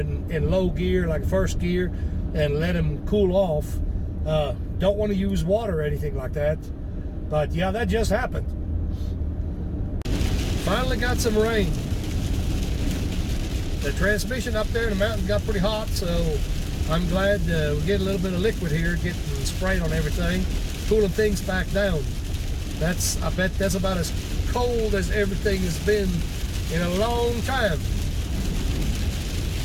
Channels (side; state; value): both; identical; correlation 1.00